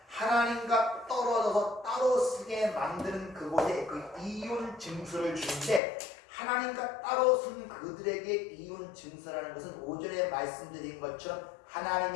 하나님과 떨어져서 따로 서게 만드는 그곳에 그 이혼 증서를 주는데, 하나님과 따로 쓴 그들에게 이혼 증서라는 것은 오전에 말씀드린 것처럼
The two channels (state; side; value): drops out; right; at 5.8 s